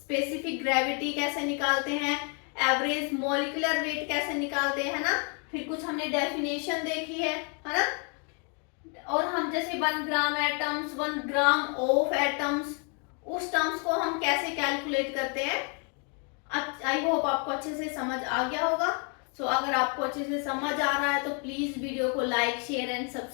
ग्रेविटी कैसे निकालते हैं, एवरेज मॉलिक्यूलर वेट कैसे निकालते हैं ना, फिर कुछ हमने डेफिनेशन देखी है ना। और हम जैसे 1 ग्राम एटम्स, 1 ग्राम ऑफ एटम्स, उस टर्म्स को हम कैसे कैलकुलेट करते हैं। आई होप आपको अच्छे से समझ आ गया होगा। सो अगर आपको अच्छे से समझ आ रहा है तो प्लीज वीडियो को लाइक, शेयर एंड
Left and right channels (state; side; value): quieter; right; 36.8 dB